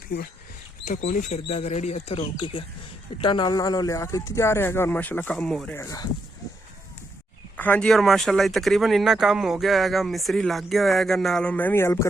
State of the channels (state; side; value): normal; both; correlation 0.79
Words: पीवन इतना कोई नहीं फिरदा रेडी इतना रोक के गया इट्टा नाल लिया के इतने जा रहा है और माशाअल्लाह काम हो रहा है। हाँ जी और माशाअल्लाह तकरीबन इन्ना काम हो गया है मिस्त्री लग गया है नाल मैं भी हेल्प